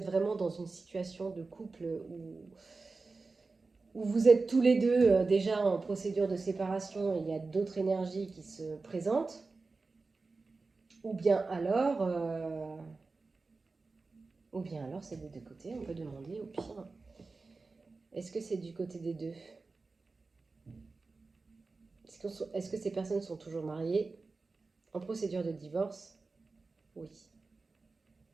vraiment dans une situation de couple où vous êtes tous les deux déjà en procédure de séparation et il y a d'autres énergies qui se présentent. Ou bien alors c'est des deux côtés, on peut demander au pire. Est-ce que c'est du côté des deux? Est-ce que ces personnes sont toujours mariées, en procédure de divorce? Oui.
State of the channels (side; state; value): left; quieter; 3.9 dB